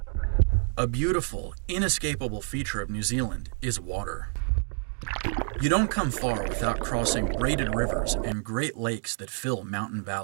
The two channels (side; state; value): left; silent; 58 dB below the other